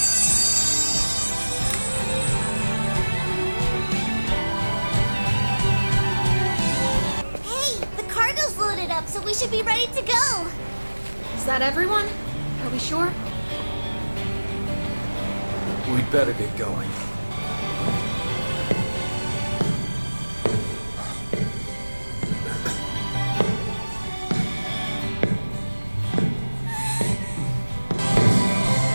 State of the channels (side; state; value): both; inverted; correlation -1.00